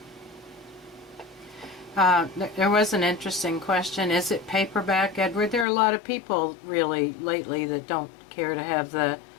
There was an interesting question. Is it paperback, Edward? There are a lot of people really lately that don't care to have the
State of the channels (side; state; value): right; drops out; at 5.7 s